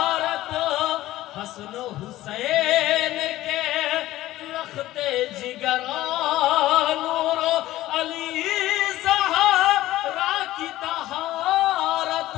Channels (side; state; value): right; quieter; 15.7 dB